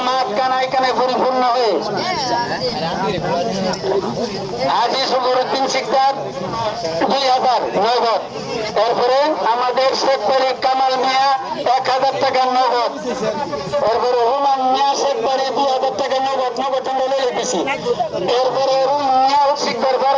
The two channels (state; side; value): identical; both; correlation 1.00